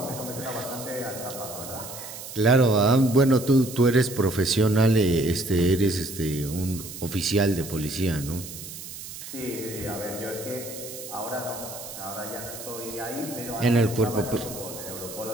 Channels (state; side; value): noise; right; hiss, 12 dB below the sound